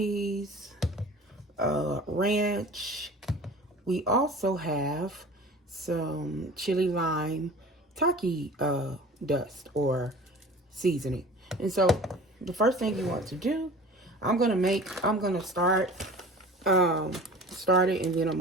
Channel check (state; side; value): normal; both; correlation 0.41